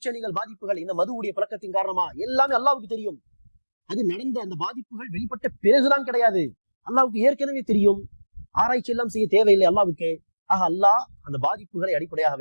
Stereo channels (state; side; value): inverted; both; correlation -1.00